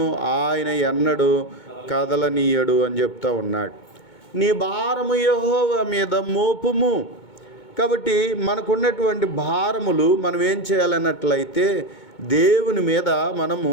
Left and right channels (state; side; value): late; right; 2.2 ms